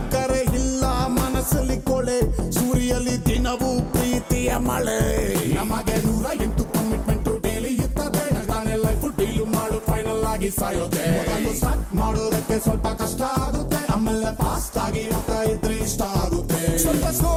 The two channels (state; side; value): identical; both; correlation 1.00